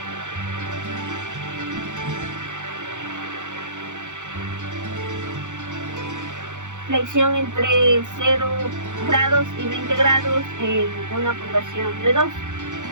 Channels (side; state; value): left; late; 0.85 ms